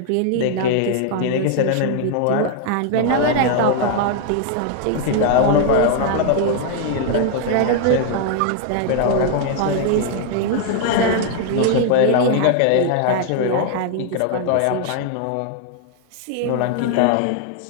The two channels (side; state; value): both; different; correlation 0.00